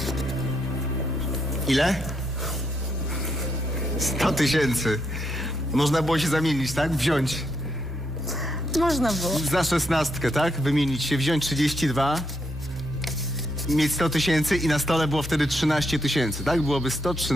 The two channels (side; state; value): both; normal; correlation 0.78